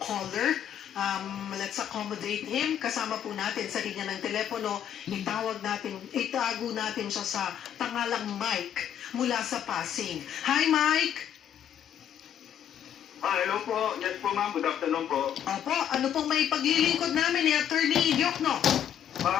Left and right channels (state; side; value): quieter; right; 9.6 dB